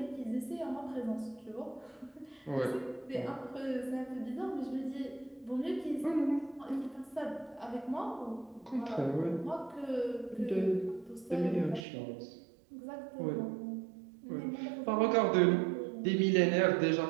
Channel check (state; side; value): drops out; left; at 11.8 s